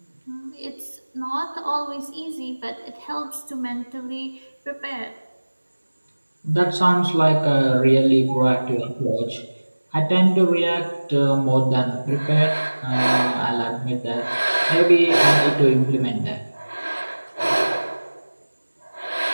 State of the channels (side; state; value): both; inverted; correlation -1.00